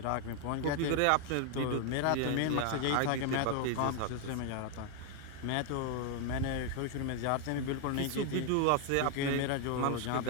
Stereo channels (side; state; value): both; different; correlation 0.00